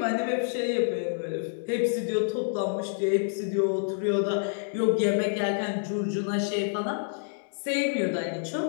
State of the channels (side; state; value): right; silent; digital silence